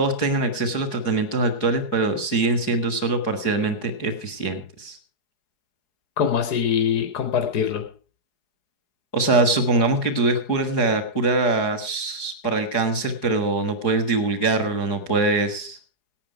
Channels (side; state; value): right; late; 4.8 ms